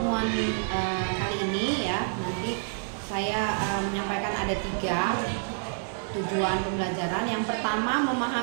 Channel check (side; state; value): left; silent; digital silence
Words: kali ini ya, nanti saya menyampaikan ada 3 tujuan pembelajaran. Yang pertama,